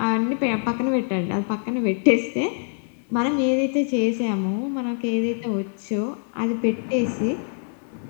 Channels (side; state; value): right; silent; digital silence